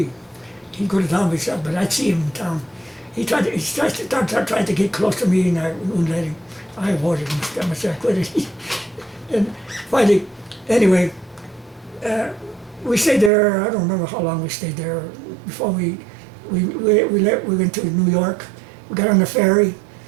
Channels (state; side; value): drops out; left; at 13.3 s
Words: He'd go to town with himself, but I'd see him in town. He tried to get close to me, and I wouldn't let him. I avoided him. I must say I quit it. And finally, anyway, we stayed there. I don't remember how long we stayed there before we went to New York. We got on the ferry.